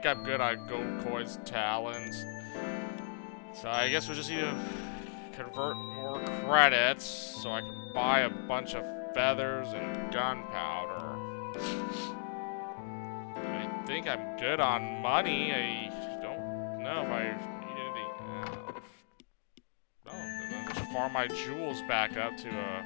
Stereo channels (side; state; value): right; silent; digital silence